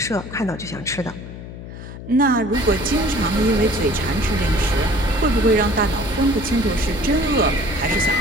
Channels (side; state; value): left; noise; hum, 12 dB below the sound